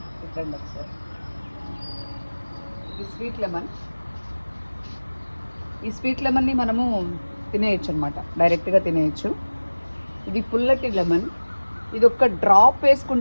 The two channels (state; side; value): inverted; both; correlation -1.00